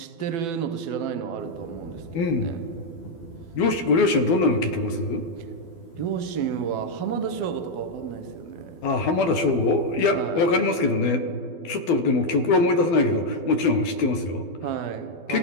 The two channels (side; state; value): right; late; 12 ms